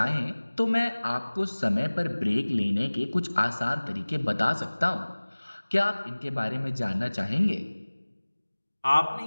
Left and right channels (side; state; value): both; inverted; correlation -1.00